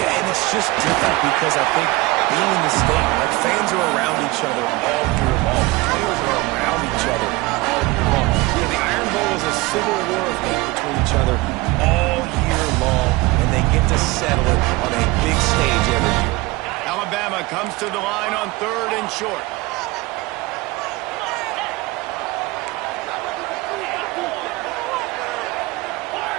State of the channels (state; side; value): quieter; left; 21.6 dB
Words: and it's just different because I think being in the state, like fans are around each other all year long. Players are around each other all year long. Yeah, the Iron Bowl is a civil war of hate between each other all year long, and they get to settle it on a big stage every year. Alabama comes to the line on 3rd and short.